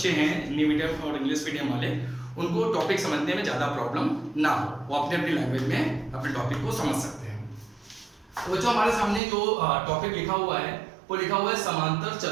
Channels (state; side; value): drops out; left; at 9.2 s